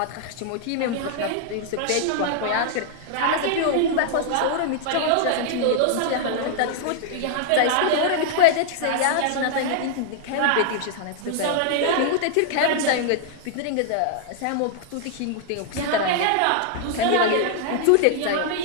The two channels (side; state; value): both; different; correlation -0.01